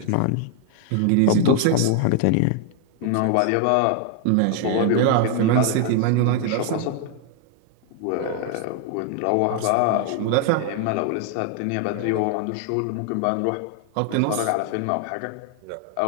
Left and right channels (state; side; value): different; both; correlation 0.00